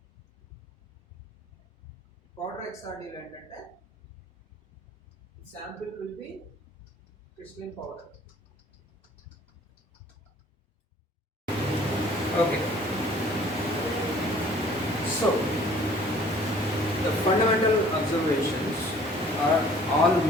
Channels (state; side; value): normal; both; correlation 0.53